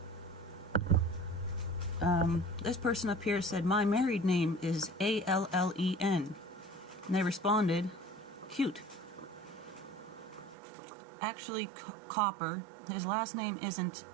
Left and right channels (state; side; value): drops out; left; at 10.6 s